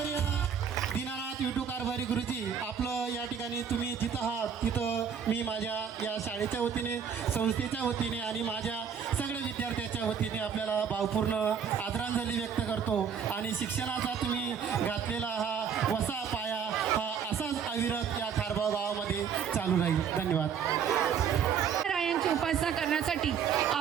दीनानाथ विठू कारभारी गुरुजी आपलं या ठिकाणी तुम्ही जिथं आहात तिथं मी माझ्या या शाळेच्या वतीने संस्थेच्या वतीने आणि माझ्या सगळ्या विद्यार्थ्याच्या वतीने आपल्याला भावपूर्ण आदरांजली व्यक्त करतो आणि शिक्षणाचा तुम्ही घातलेला हा वसा पाया हा असाच अविरत या खारबाव गावामध्ये चालू राहील. धन्यवाद. रायांची उपासना करण्यासाठी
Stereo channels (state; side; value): quieter; left; 7.4 dB